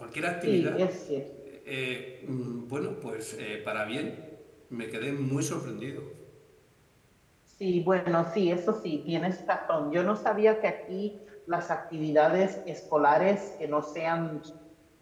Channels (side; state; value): both; identical; correlation 1.00